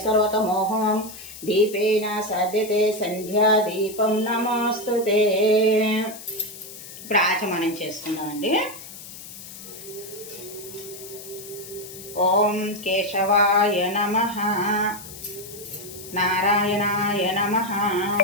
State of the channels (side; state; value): left; noise; hiss, 14 dB below the sound